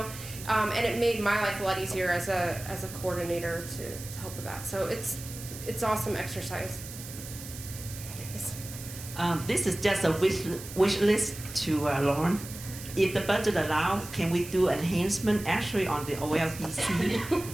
And it made my life a lot easier as a coordinator to help with that. So it's awesome exercise. Yes. This is just a wish list to Lauren. If the budget allows, can we do enhancement actually on the OLDC,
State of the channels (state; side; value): noise; right; hiss, 12 dB below the sound